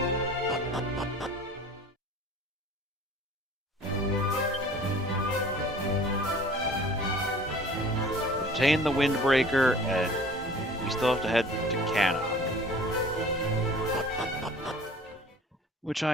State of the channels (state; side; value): normal; both; correlation 0.47